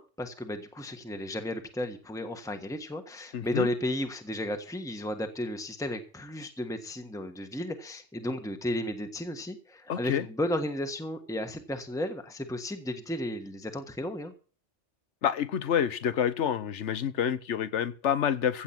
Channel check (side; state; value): right; quieter; 4.1 dB